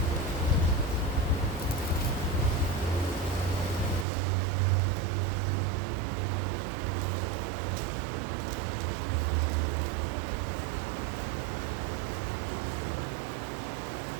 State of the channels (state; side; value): drops out; left; at 4.0 s